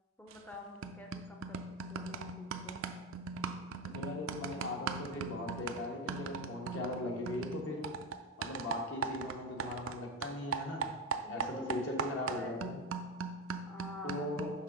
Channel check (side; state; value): both; normal; correlation 0.17